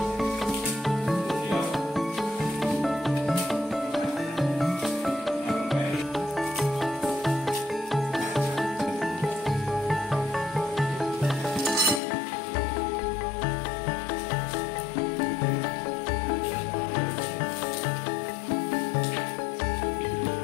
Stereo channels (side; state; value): right; drops out; at 12.0 s